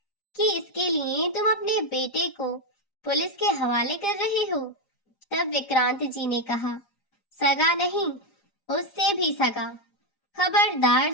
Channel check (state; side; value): late; right; 4.9 ms